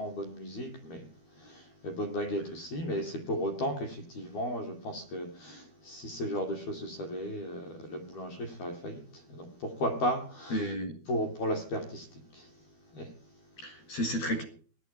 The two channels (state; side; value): late; right; 12 ms